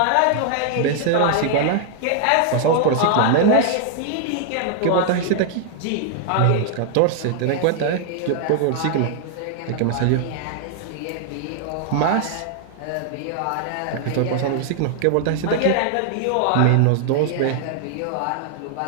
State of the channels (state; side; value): different; both; correlation 0.00